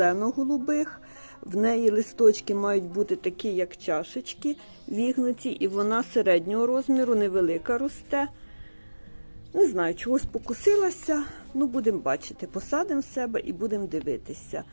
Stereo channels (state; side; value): inverted; both; correlation -1.00